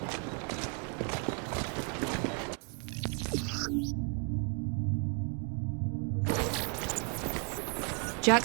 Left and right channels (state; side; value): quieter; left; 35.8 dB